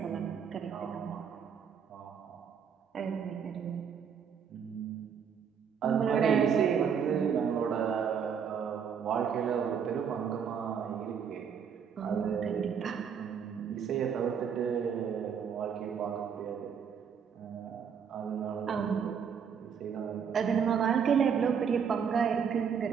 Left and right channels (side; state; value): left; quieter; 7.2 dB